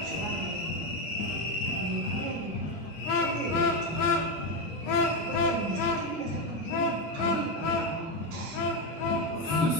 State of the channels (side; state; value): both; normal; correlation 0.10